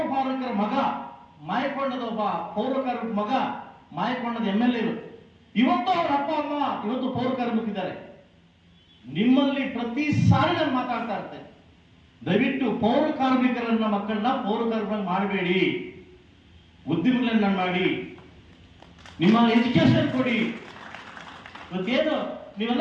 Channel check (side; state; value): both; identical; correlation 1.00